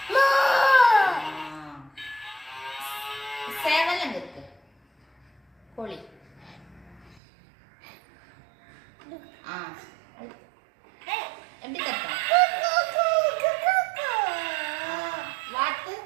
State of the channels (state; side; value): drops out; left; at 7.2 s